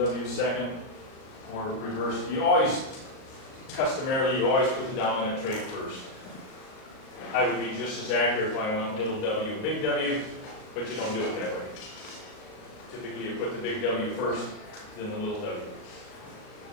w is second, or reverse. You always, customarily, you always put the dominant trait first. I would be just as accurate if I went little w, big W, but you don't do it that way. Typically, you put the big W first, then the little w. Okay.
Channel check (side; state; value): right; late; 37 ms